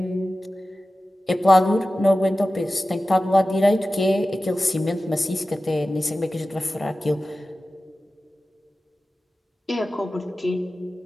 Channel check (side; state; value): both; normal; correlation 0.95